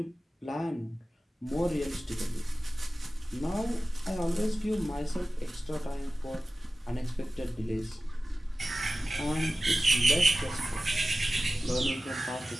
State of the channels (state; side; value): normal; both; correlation 0.96